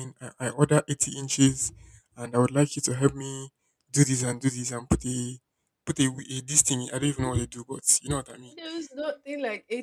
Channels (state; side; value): identical; both; correlation 1.00